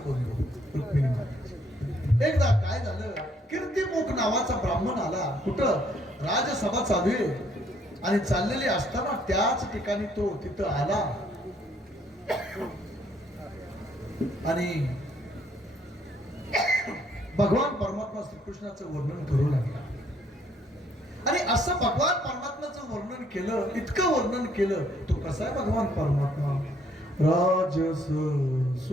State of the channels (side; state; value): both; normal; correlation 0.67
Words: बंधू रुक्मिणी म्हणतात. एकदा काय झालं, कीर्तिमुख नावाचा ब्राह्मण आला. कुठं? राजसभा चालू आहे आणि चाललेली असताना त्याच ठिकाणी तो तिथं आला आणि भगवान परमात्मा श्रीकृष्णाचं वर्णन करू लागला. आणि असं भगवान परमात्म्याचं वर्णन केलं, इतकं वर्णन केलं. तो कसा आहे भगवान परमात्मा? राजस